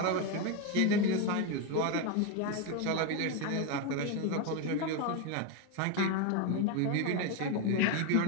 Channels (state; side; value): different; both; correlation 0.02